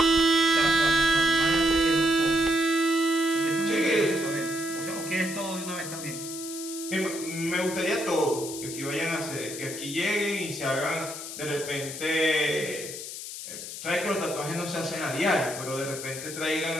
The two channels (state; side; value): noise; left; hiss, 9 dB below the sound